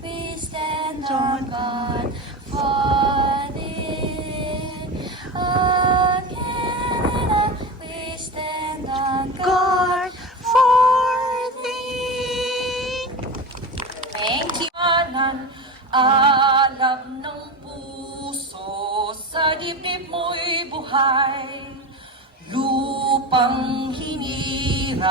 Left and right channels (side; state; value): both; normal; correlation 0.24